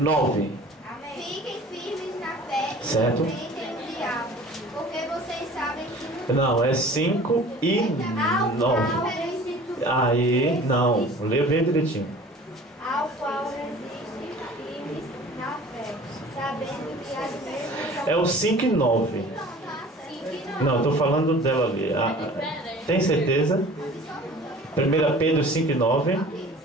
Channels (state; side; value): normal; both; correlation 0.45